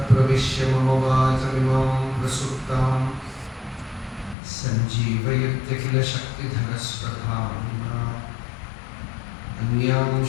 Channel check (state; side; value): drops out; right; at 4.4 s